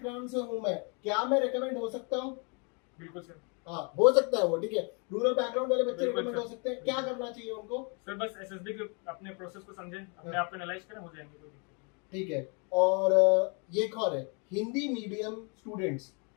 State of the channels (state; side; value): quieter; right; 35.0 dB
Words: से हूं मैं, क्या मैं रिकमेंड हो सकता हूँ? बिल्कुल सर। हाँ, हो सकता है वो। ठीक है, रूरल बैकग्राउंड वाले बच्चे बिल्कुल रिकमेंड सर। हो सकते हैं। क्या करना चाहिए उनको? सर बस एसएसबी के अपने प्रोसेस को समझें, अपने आप को एनालाइज करें, हो जाएंगे। कोई दिक्कत ठीक है, और ये एक और है, हिंदी मीडियम स्टूडेंट्स